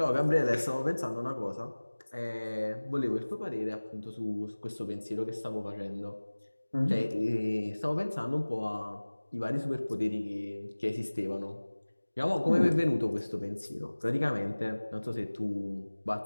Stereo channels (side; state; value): both; inverted; correlation -1.00